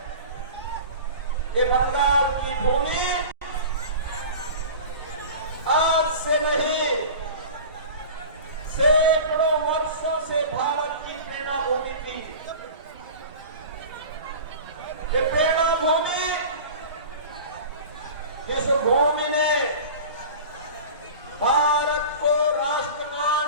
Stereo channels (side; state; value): both; inverted; correlation -0.36